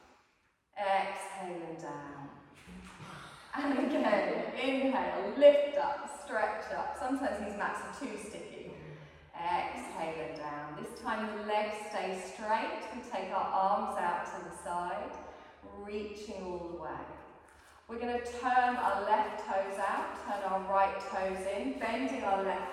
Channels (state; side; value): identical; both; correlation 1.00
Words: Exhale and down. And again, inhale, lift up, stretch up. Sometimes these mats are too sticky. Exhale and down. This time the legs stay straight. We take our arms out to the side, reaching all the way. We're going to turn our left toes out, turn our right toes in, bending our